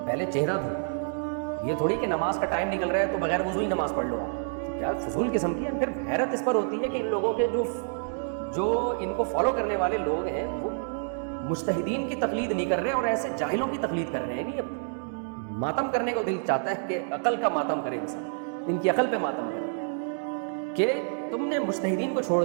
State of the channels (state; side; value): silent; left; 59 dB below the other